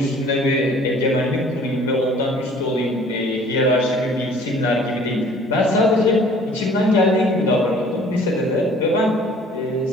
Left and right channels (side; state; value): both; normal; correlation 0.52